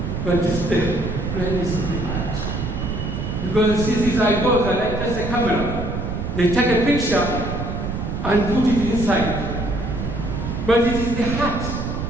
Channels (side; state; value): right; noise; rumble, 4 dB below the sound